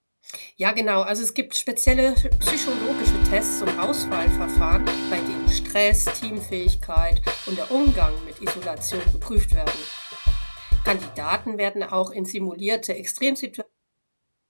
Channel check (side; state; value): both; inverted; correlation -1.00